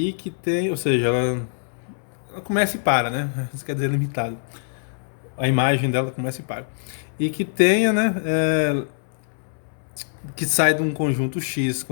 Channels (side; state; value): right; silent; 63 dB below the other